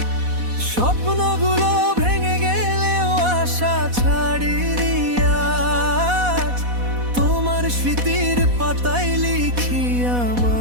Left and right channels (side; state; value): left; late; 4.1 ms